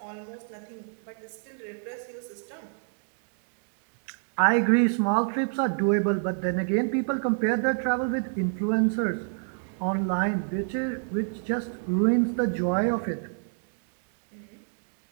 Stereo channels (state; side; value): silent; left; 59 dB below the other